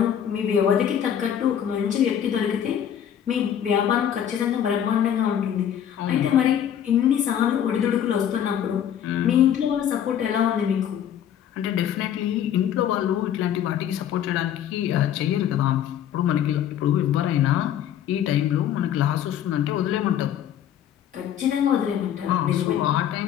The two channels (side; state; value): right; quieter; 9.8 dB